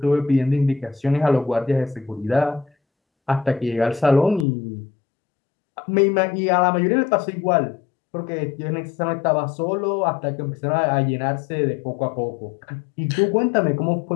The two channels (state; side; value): drops out; right; at 4.5 s